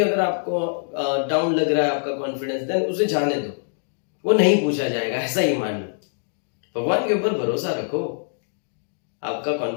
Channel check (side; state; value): right; silent; digital silence